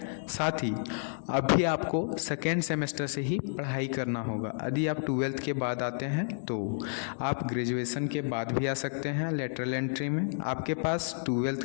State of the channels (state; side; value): silent; right; digital silence